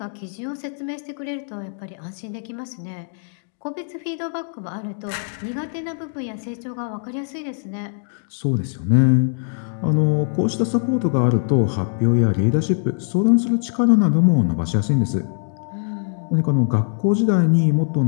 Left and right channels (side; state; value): right; silent; digital silence